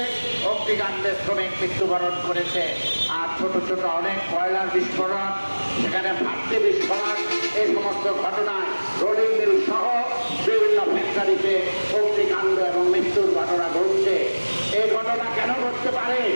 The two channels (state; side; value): inverted; both; correlation -1.00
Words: অগ্নিকাণ্ডে শ্রমিক মৃত্যুবরণ করেছে। আর ছোট ছোট অনেক কয়লার বিস্ফোরণ, সেখানে ভাট্টি বিস্ফোরণ, এই সমস্ত ঘটনায় রোলিং মিল সহ বিভিন্ন ফ্যাক্টরিতে অগ্নিকাণ্ড এবং মৃত্যুর ঘটনা ঘটছে। এই ঘটনা কেন ঘটতে পারে?